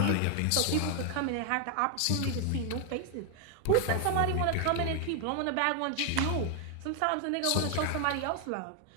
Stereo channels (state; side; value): different; both; correlation 0.00